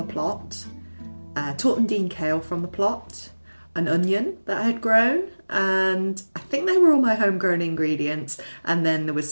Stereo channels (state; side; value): inverted; both; correlation -1.00